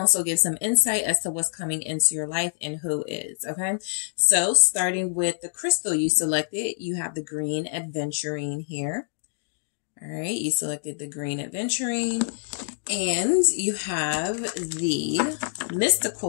give some insight as to what's coming into your life and who is, okay? So starting with the crystal you selected, you have the green adventurine here. All right, you selected the green adventurine, and you have the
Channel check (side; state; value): right; silent; digital silence